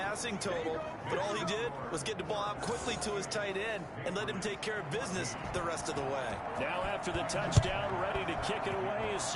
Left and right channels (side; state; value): both; identical; correlation 1.00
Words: total, but all he did was get the ball out quickly to his tight end and let him take care of business the rest of the way. Now after the touchdown, ready to kick it away is